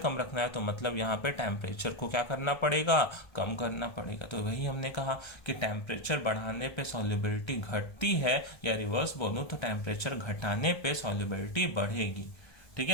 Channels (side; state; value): right; late; 1.3 ms